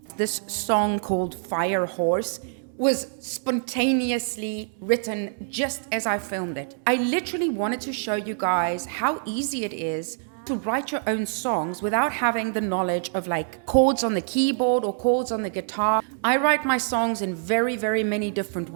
This song called Fire Horse was spontaneously written just as I filmed it. I literally wanted to show you guys how easy it is to write your own songs without having the knowledge of like chords on the keyboard or chords on the guitar. I write my songs in very, very many different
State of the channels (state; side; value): silent; left; 62 dB below the other